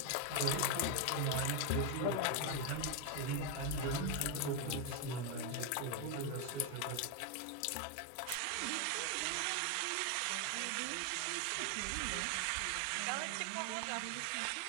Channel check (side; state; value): both; different; correlation 0.01